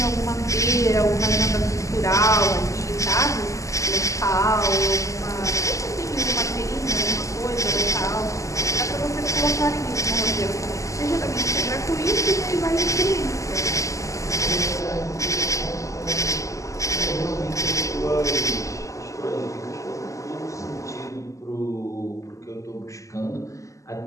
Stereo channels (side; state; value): right; late; 0.16 ms